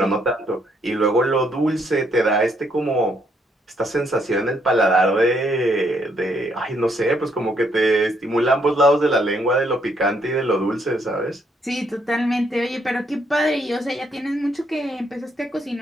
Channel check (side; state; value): both; normal; correlation 0.72